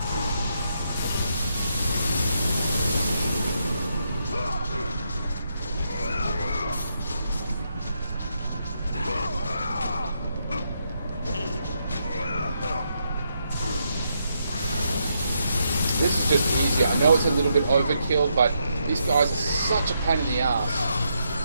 This is just easier. I know it's a little bit overkill, but these guys are such a pain in the ass.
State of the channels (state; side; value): inverted; both; correlation -0.80